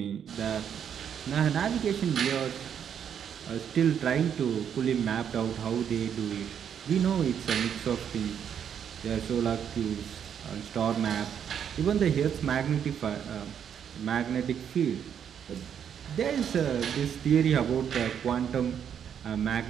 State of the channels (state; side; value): quieter; left; 8.4 dB